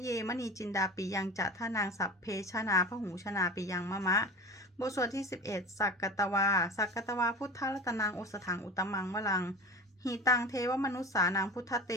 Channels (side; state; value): both; normal; correlation 0.32